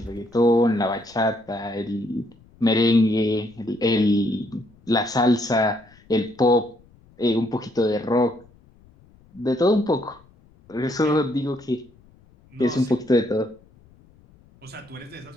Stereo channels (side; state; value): left; noise; rumble, 29 dB below the sound